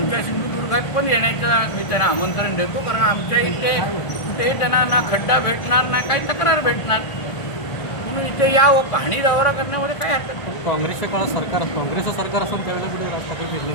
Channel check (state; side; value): late; right; 1.7 ms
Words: सिंधुदुर्गात पण येण्याचं मी त्यांना आमंत्रण देतो, कारण आमच्या इथे कुठेही त्यांना ना खड्डा भेटणार ना काही तक्रार भेटणार, म्हणून इथे यावं. पाहणी दौरा करण्यामध्ये काय हरकत नाही. काँग्रेसच्या काळात काँग्रेसचं सरकार असं त्यावेळेला कुठे राज ठाकरे फिरले